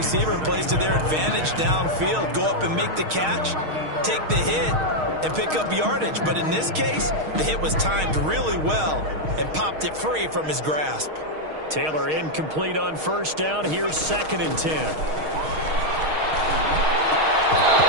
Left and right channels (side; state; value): left; late; 6.4 ms